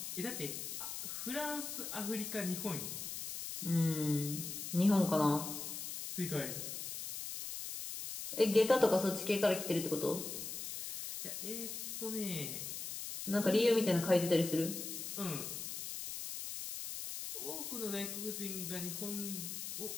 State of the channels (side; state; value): left; noise; hiss, 6 dB below the sound